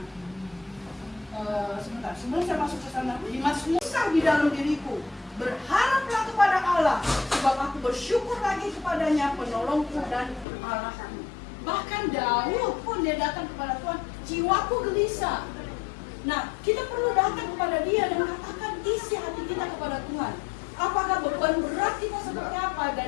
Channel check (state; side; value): drops out; right; at 10.5 s